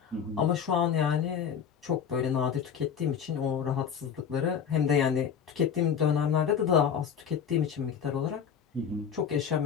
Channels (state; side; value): quieter; right; 7.6 dB